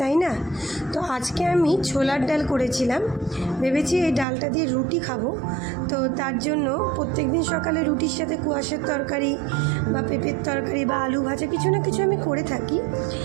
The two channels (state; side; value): drops out; left; at 4.2 s